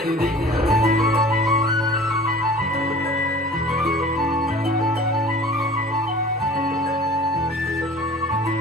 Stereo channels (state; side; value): normal; both; correlation 0.44